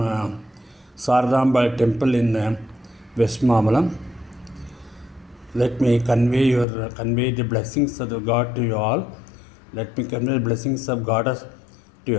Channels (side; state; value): right; drops out; at 6.7 s